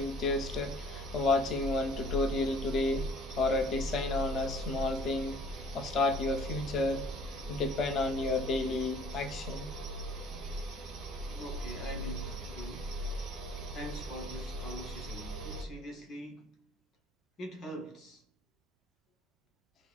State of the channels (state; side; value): normal; both; correlation 0.54